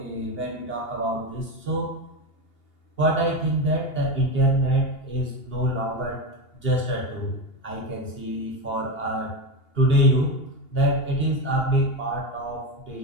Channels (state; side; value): late; right; 2.8 ms